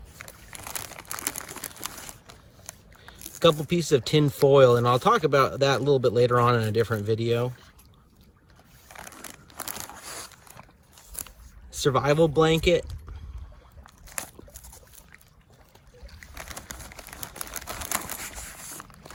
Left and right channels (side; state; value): both; identical; correlation 1.00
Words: a couple pieces of tin foil, and I'll talk about that a little bit later on in a different video. Survival blanket,